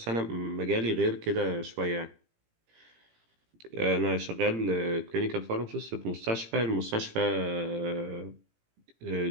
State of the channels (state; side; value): late; left; 18 ms